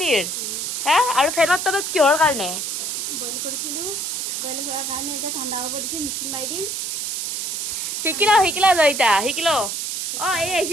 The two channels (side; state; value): right; noise; hiss, 3 dB below the sound